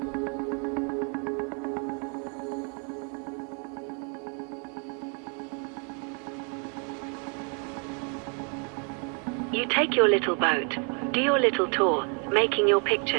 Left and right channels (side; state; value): left; quieter; 39.1 dB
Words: You take your little boat, do your little tour, making your